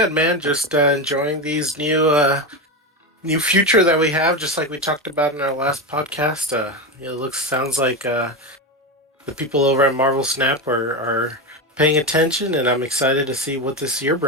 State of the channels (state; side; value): normal; both; correlation 0.16